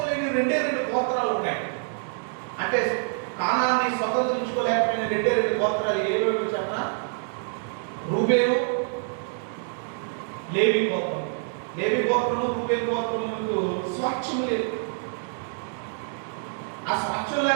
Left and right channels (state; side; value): silent; left; 61 dB below the other